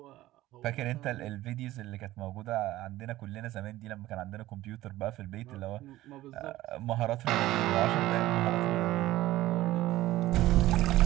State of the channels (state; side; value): quieter; left; 16.1 dB